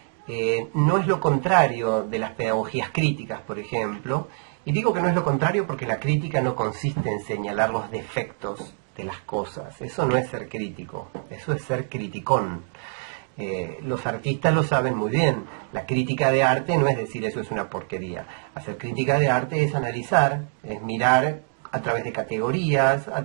no es lo contrario de las pedagogías críticas, por ejemplo. Y digo que no es lo contrario porque la crítica no consiste en señalar los defectos de las cosas. Eso no es ser crítico, eso es ser criticón. Los artistas lo saben muy bien. La crítica de arte no es decir eso es una porquería. Hacer crítica de arte es analizar, es mirar a través de categorías, a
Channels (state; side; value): silent; left; digital silence